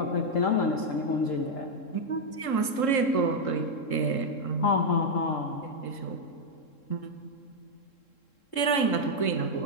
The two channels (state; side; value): late; right; 3.7 ms